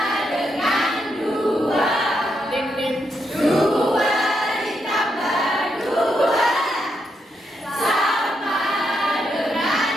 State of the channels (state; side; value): normal; both; correlation 0.81